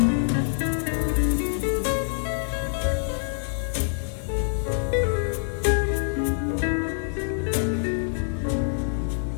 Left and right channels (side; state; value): right; silent; 56 dB below the other